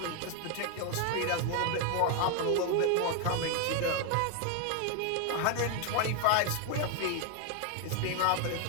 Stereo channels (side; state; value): both; different; correlation 0.01